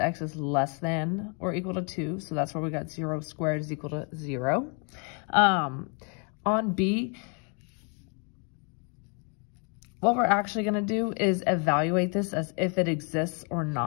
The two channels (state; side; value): quieter; right; 37.5 dB